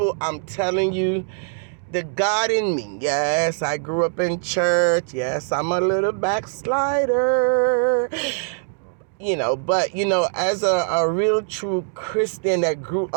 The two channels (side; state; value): left; silent; digital silence